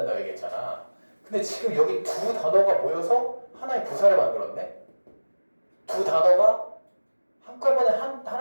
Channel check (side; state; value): both; inverted; correlation -1.00